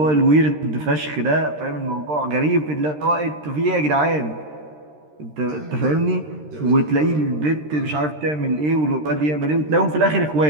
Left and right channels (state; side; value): late; left; 13 ms